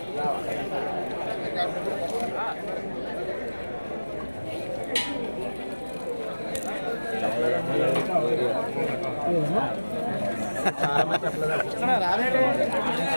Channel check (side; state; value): both; inverted; correlation -1.00